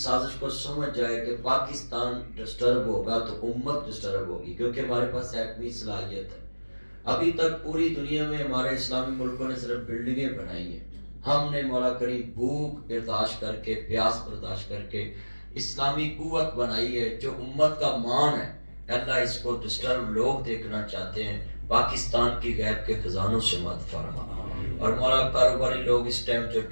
को समझ जाए कि पाकिस्तान डिस्टर्ब होगा तो उम्मत डिस्टर्ब होगी, क्योंकि हमारे पास एटमी सलाहियत है। अभी तक पूरी दुनिया में हमारे इस्लामी मुल्कों ने सिर्फ बिल्डिंगें बनाई हैं, हमने मौला करीम भूख बर्दाश्त करके, प्यास बर्दाश्त करके इस्लामी कुव्वत बनाई है जो उम्मत का मान है। अल्लाह इसको डिस्टर्ब लोग देखना चाहते हैं, पाकिस्तान की गैब के खजानों से मत फरमा। और मौला कारोबारी लोग इस टाइम जो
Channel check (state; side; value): inverted; both; correlation -1.00